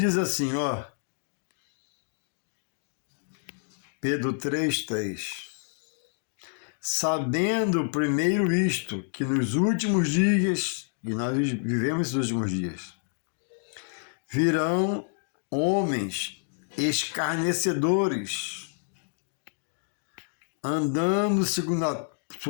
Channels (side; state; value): right; silent; 59 dB below the other